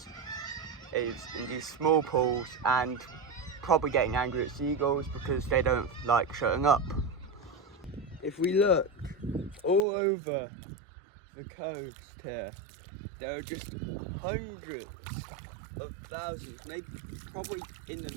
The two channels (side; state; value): left; drops out; at 9.9 s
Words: in these small pools, and probably getting angry at seagulls because they don't like shutting up. If we look all over the coast here, there are just hundreds of thousands, maybe probably in